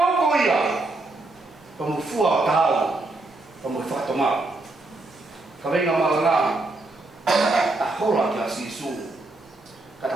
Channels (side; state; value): left; quieter; 3.0 dB